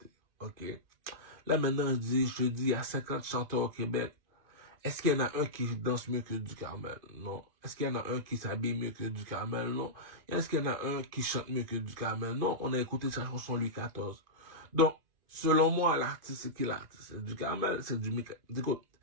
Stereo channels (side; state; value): left; late; 2.5 ms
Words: OK. Là, maintenant, je te dis, il y a 50 chanteurs au Québec. Est-ce qu'il y en a un qui danse mieux que du Carmel? Non. Est-ce qu'il y en a un qui s'habille mieux que du Carmel? Non. Est-ce qu'il y en a un qui chante mieux que du Carmel? Non. On a écouté sa chanson Louis XIV. Donc, selon moi, l'artiste, c'est qui l'artiste? C'est du Carmel, c'est du Mika. Écoute,